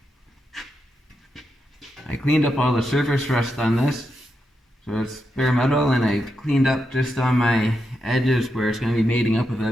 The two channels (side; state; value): both; normal; correlation 0.85